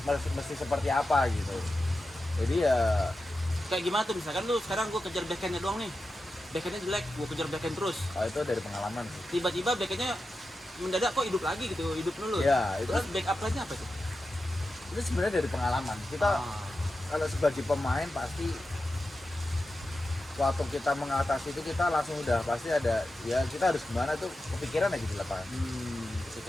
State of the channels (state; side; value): normal; both; correlation 0.91